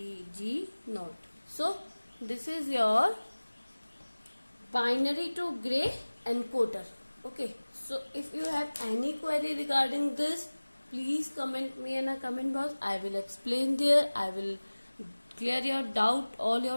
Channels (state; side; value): inverted; both; correlation -1.00